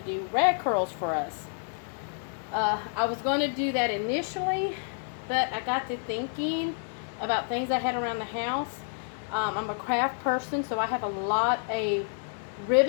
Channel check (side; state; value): right; silent; digital silence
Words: do rag curls for us. I was going to do that initially, but I got to thinking about things I had around the house. I'm a craft person, so I have a lot of